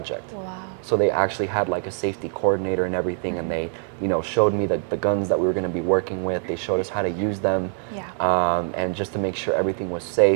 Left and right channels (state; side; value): silent; left; 56 dB below the other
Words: Wow. So they actually had like a safety coordinator and everything, and they, you know, showed me the guns that we were going to be working with. They showed us how to use them, and just to make sure everything was